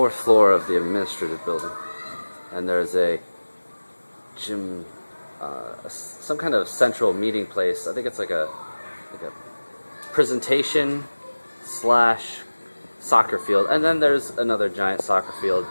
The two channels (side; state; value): both; inverted; correlation -1.00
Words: floor of the administrative building, and there's a gym, some kind of central meeting place. I think it's like a presentation slash soccer field, and then there's another giant soccer field